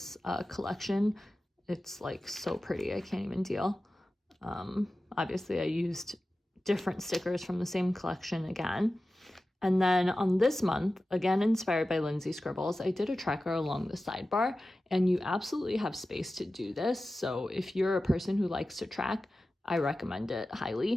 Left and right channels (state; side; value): normal; both; correlation 0.95